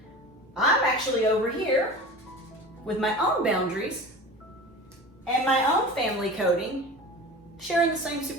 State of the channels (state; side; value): normal; both; correlation 0.34